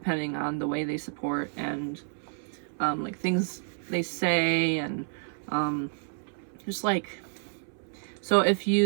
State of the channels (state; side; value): silent; left; 58 dB below the other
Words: on the way they support and like things they say, and just like, so if